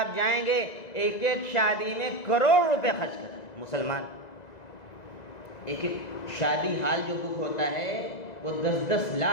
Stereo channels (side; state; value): right; late; 2.0 ms